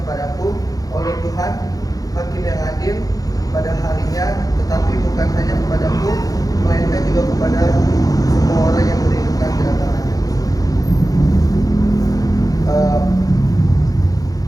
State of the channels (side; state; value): right; late; 0.18 ms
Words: oleh Tuhan, Hakim yang adil pada harinya, tetapi bukan hanya kepadaku, melainkan juga kepada semua orang yang merindukan kedatangannya.